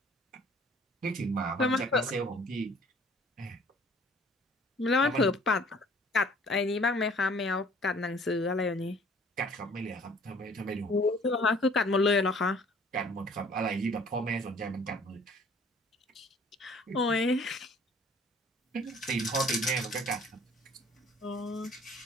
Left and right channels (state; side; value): normal; both; correlation 0.54